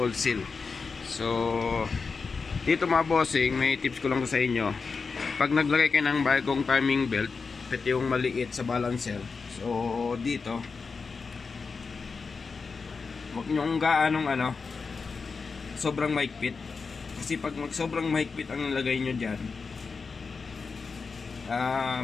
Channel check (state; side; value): quieter; right; 4.8 dB